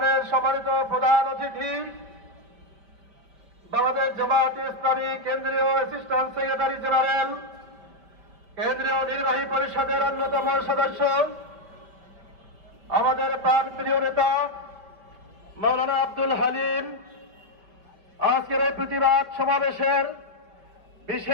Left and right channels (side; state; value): left; late; 5.1 ms